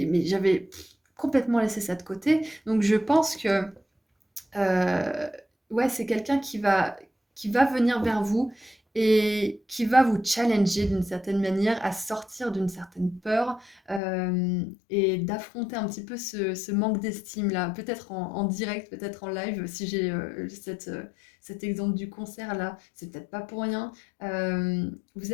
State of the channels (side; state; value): right; drops out; at 14.0 s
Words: j'avais complètement laissé ça de côté. Donc je pense que ouais, c'est quelqu'un qui va venir vers vous et qui va vous challenger d'une certaine manière à sortir d'une certaine peur, et d'affronter un petit peu ce manque d'estime-là. Peut-être en direct, peut-être en live, si j'ai cet exemple du concert là, c'est peut-être pas pour rien. Vous